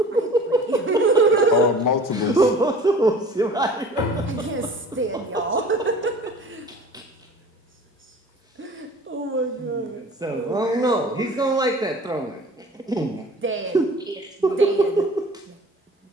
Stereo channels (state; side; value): normal; both; correlation 0.44